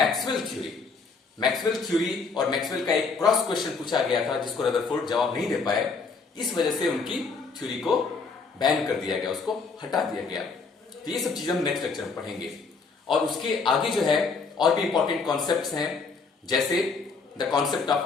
Maxwell theory और मैक्सवेल का एक क्रॉस क्वेश्चन पूछा गया था जिसको रदरफोर्ड जवाब नहीं दे पाए, इस वजह से उनकी थ्योरी को बैन कर दिया गया, उसको हटा दिया गया। तो ये सब चीजें हम नेक्स्ट लेक्चर में पढ़ेंगे। और उसके आगे जो है और भी इंपॉर्टेंट कॉन्सेप्ट्स हैं, जैसे the concept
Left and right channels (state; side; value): quieter; right; 4.7 dB